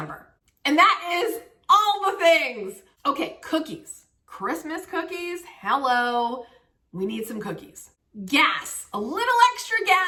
And that is all the things. Okay, cookies. Christmas cookies. Hello. We need some cookies. Gas. A little extra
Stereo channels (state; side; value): identical; both; correlation 1.00